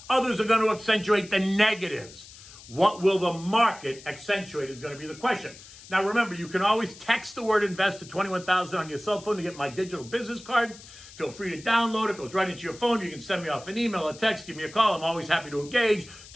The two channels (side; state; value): left; noise; hiss, 19 dB below the sound